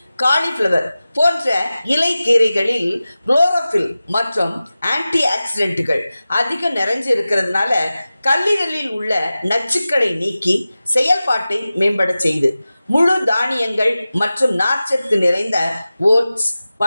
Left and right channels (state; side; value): inverted; both; correlation -0.96